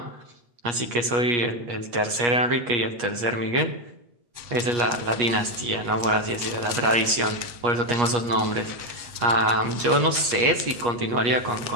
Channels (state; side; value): late; left; 8.4 ms